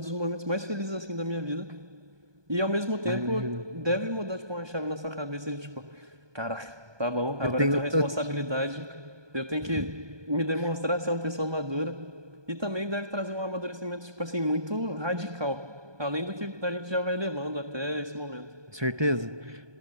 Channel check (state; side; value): late; left; 1.2 ms